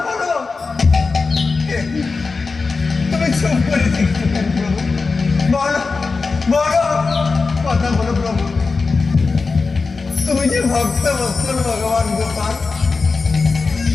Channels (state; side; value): quieter; right; 4.3 dB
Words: বলো। তুমি চুপ করে দেখতে পারো। ভক্ত বৎসল ভগবান গোপাল